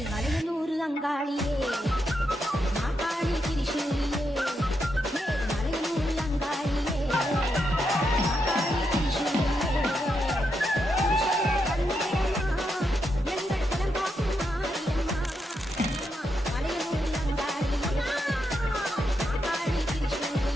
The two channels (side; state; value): both; normal; correlation 0.83